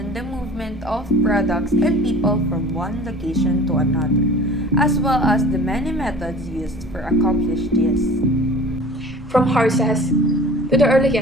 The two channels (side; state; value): both; normal; correlation 0.43